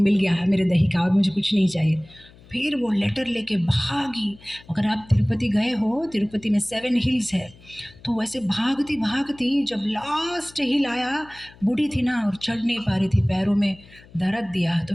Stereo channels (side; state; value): left; noise; hum, 24 dB below the sound